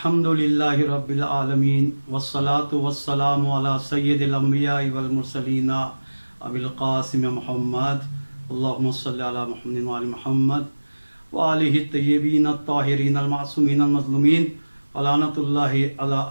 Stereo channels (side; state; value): both; inverted; correlation -1.00